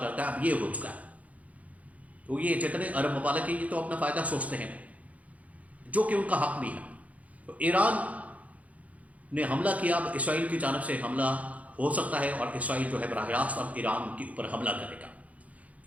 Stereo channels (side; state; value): left; late; 0.069 ms